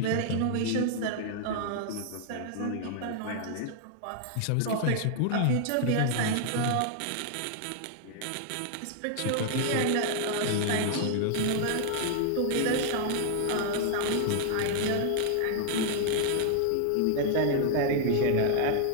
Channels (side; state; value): both; different; correlation 0.00